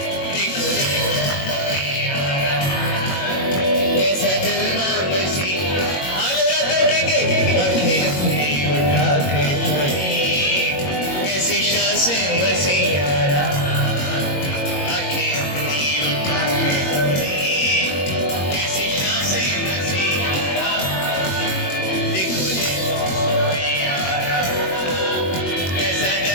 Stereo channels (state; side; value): late; right; 22 ms